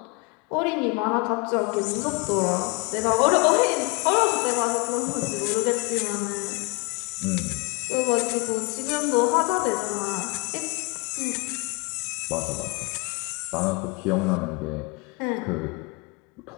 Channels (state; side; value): quieter; right; 28.9 dB